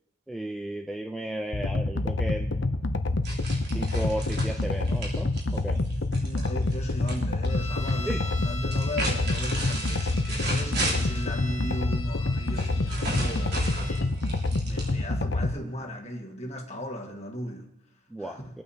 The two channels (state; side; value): normal; both; correlation 0.74